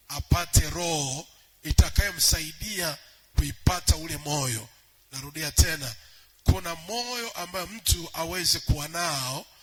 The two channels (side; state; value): both; identical; correlation 1.00